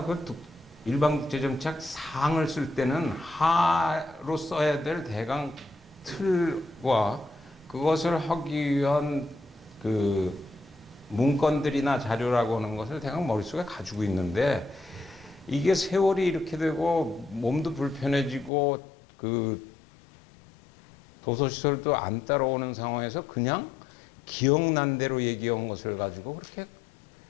그 일반국제정치학 상을 쓸 때는 하로 써야 될 대강 틀과 그것을 하기 위한 그 문건들이나 자료라고 하는 것을 대강 머릿속에 가지고 있는데, 이게 세월이 이렇게 되고 몸도 불편해지고 그 도서시설도 안 따라오는 상황에서 그냥 기억난 대로 얘기한 것을 가지고 그렇게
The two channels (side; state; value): right; drops out; at 18.5 s